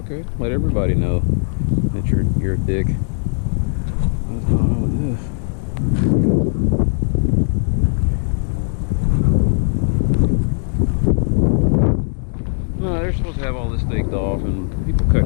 Okay, let everybody know that you're a dick. What's going on with this? No, they're supposed to have all this staked off, and people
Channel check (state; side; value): silent; right; digital silence